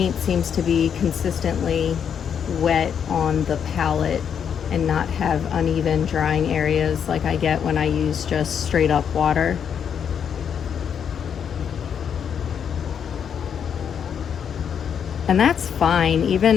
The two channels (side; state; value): right; quieter; 7.9 dB